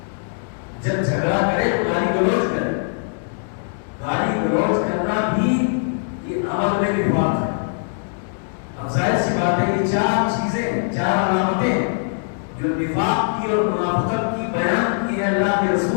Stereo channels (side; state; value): right; silent; 65 dB below the other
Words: جب جھگڑا کرے تو گالی گلوچ کرے. گالی گلوچ کرنا بھی یہ عمل میں نفاق ہے. اب ظاہر سی بات ہے یہ چار چیزیں، چار علامتیں جو نفاق کی اور منافقت کی بیان کی ہے اللہ کے